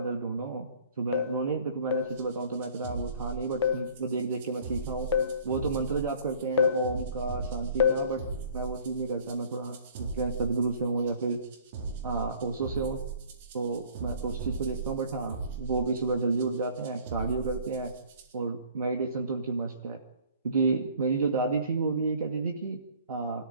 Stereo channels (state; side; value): inverted; both; correlation -0.53